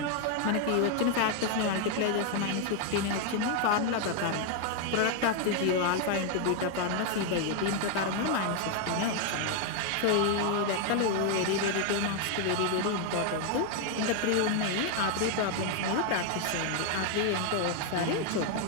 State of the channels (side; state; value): both; different; correlation 0.00